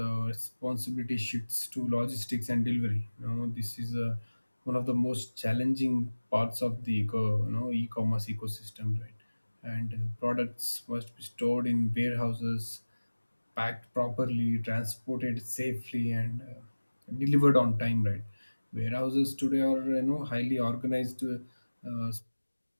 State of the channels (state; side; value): inverted; both; correlation -1.00